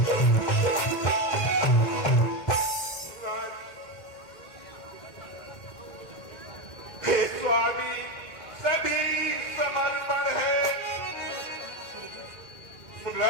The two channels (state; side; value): late; right; 2.1 ms